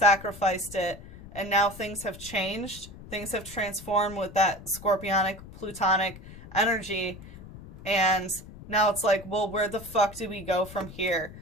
it, and now things have changed. Things have transformed with that scorpionic, plutonic energy, and now it's like, well, where the fuck do we go from here?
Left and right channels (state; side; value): noise; left; rumble, 16 dB below the sound